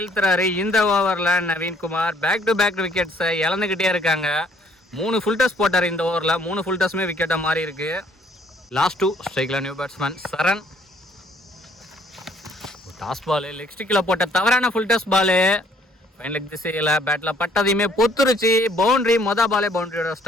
இந்த ஓவரில் நவீன்குமார். பேக் டு பேக் விக்கெட்ஸை இழந்துக்கிட்டே இருக்காங்க. 3 ஃபுல் டஸ் போட்டார் இந்த ஓவரில். 3 ஃபுல் டஸ்மே விக்கெட்டாக மாறி இருக்கு. லாஸ்ட் 2 ஸ்ட்ரைக்கில் நியூ பேட்ஸ்மேன் சரண். டாஸ் பால் லெக் ஸ்டிக்கில் போட்ட தவறான ஃபுல் டஸ் பாலு. ஃபைன் லெக் திசையில் பேட்டில் பட்டதையுமே பொத்துருச்சு. பவுண்ட்ரி. பாலே பவுண்ட்ரியோட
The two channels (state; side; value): normal; both; correlation 0.62